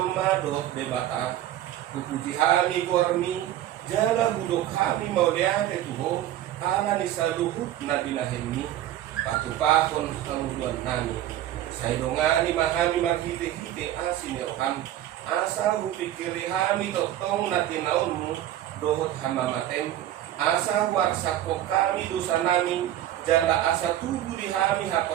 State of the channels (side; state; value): left; quieter; 12.7 dB